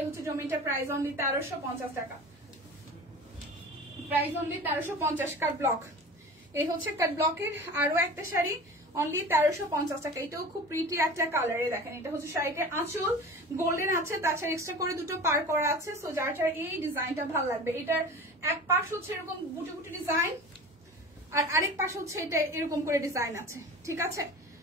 হচ্ছে জমিটা, প্রাইস অনলি 1350 টাকা, প্রাইস অনলি 1350। কাট ব্লক, এই হচ্ছে কাট ব্লকের আরো একটা শাড়ি, অনলি 1350 টাকা। এটাও খুব প্রিটি একটা কালারে, দেখেন এটা হচ্ছে শাড়িটার আঁচল, গোল্ডেন আছে, তাছাড়া এক্সট্রা করে দুটো পার করা আছে। সো যার যার এই ডিজাইনটা ভালো লাগবে, এটার এক পাশ হচ্ছে এরকম বুটি বুটি ডিজাইন আর আরেক পাশ হচ্ছে এটা এরকম করে ডিজাইন আছে, ঠিক আছে।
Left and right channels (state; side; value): normal; both; correlation 0.36